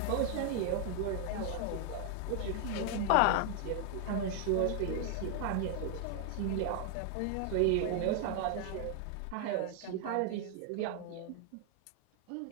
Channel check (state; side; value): different; both; correlation 0.00